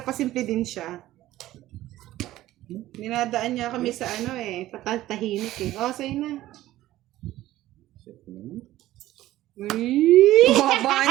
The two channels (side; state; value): left; quieter; 15.2 dB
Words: din siya. Dinadaan niya kami sa ano eh, patahimik eh. Oh, sa'yo na. Baba